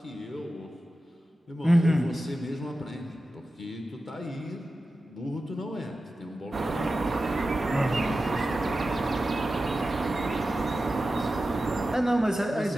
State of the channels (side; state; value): both; normal; correlation 0.93